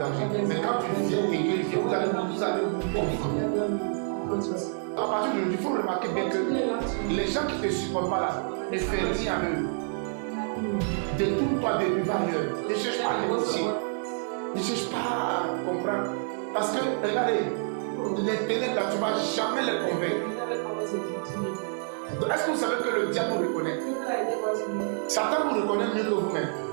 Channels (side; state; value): left; silent; 59 dB below the other